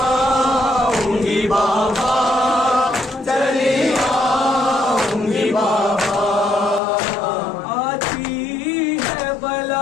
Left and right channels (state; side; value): drops out; right; at 6.8 s